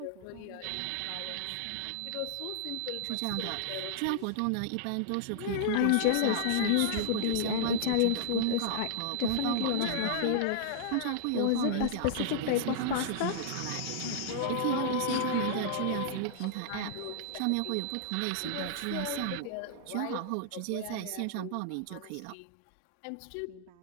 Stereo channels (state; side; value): different; both; correlation -0.01